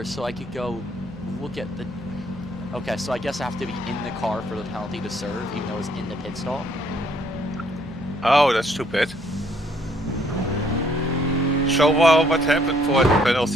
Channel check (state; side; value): normal; both; correlation 0.66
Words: so I could go look at the... Okay, so I guess I have to be in the car for the penalty to serve, even though it's in the pit stall. Oh, that's stupid. So what happened for the